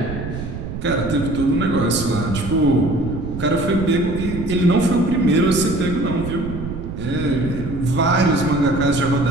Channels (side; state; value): right; noise; rumble, 7 dB below the sound